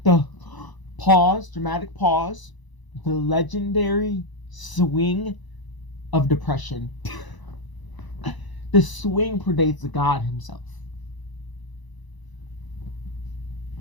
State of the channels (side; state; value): right; late; 1.0 ms